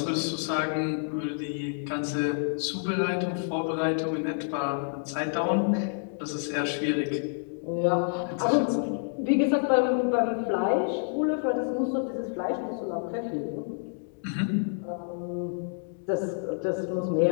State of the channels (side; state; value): right; silent; digital silence